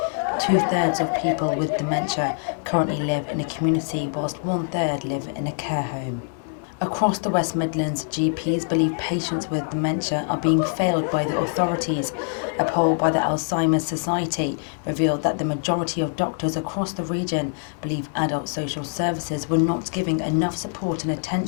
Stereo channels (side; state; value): right; silent; 61 dB below the other